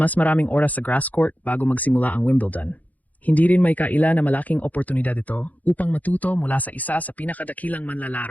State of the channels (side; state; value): right; late; 0.077 ms